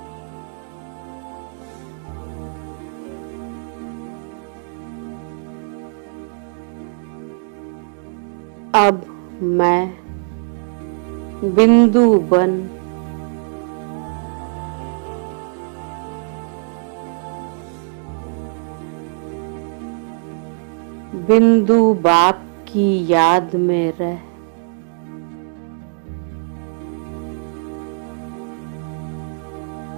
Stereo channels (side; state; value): left; silent; 59 dB below the other